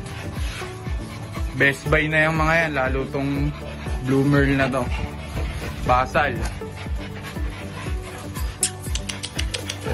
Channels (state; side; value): identical; both; correlation 1.00